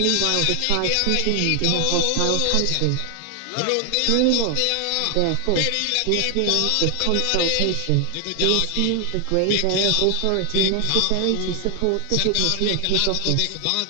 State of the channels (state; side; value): different; both; correlation 0.00